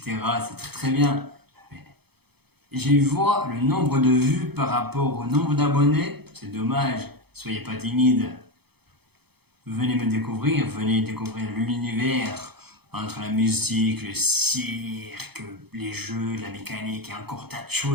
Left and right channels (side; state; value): left; late; 0.97 ms